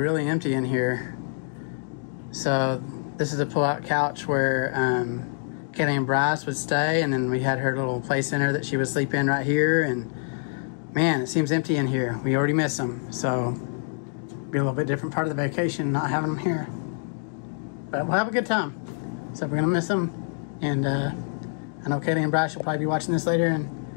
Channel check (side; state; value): right; silent; digital silence